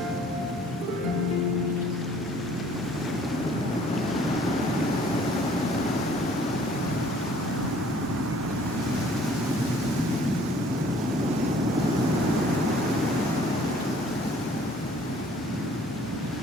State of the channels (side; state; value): both; normal; correlation 0.56